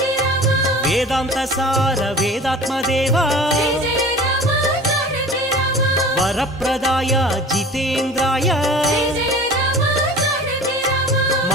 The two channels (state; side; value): normal; both; correlation 0.41